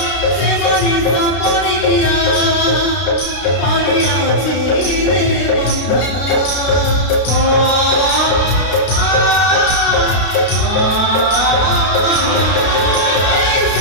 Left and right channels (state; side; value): late; right; 32 ms